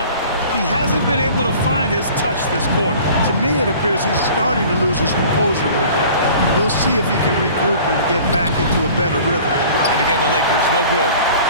He hasn't been able to find his touch this quarter. To me, it appears he's starting to lose his composure a little bit. We'll see if he can regroup and get back into a better rhythm. And again, the Lakers, no good.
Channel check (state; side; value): inverted; both; correlation -0.46